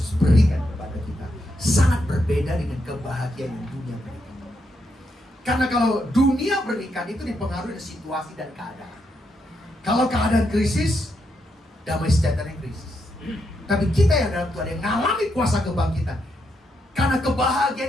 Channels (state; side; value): normal; both; correlation 0.80